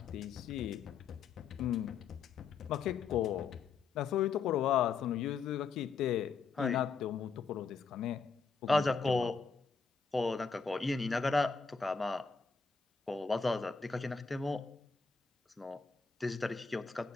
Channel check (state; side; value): quieter; right; 5.2 dB